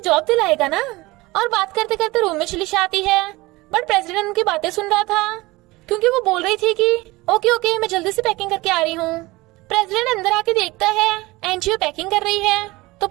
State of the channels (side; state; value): left; quieter; 21.1 dB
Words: दिलाएगा ना। और बात करते करते रूम में चली जाती है बट प्रेसिडेंट उनकी बातें सुन रहा था क्योंकि वो बोल रही थी कि ओके मैं जल्दी से पैकिंग करके आ रही हूँ। प्रेसिडेंट अंदर आके देखता है एनजीओ पैकिंग कर रही है तो